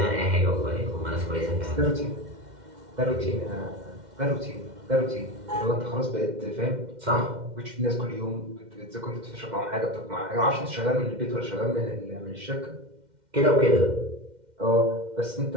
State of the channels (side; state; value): left; late; 2.1 ms